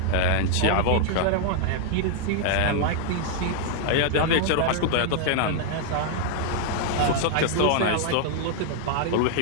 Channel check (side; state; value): both; different; correlation 0.00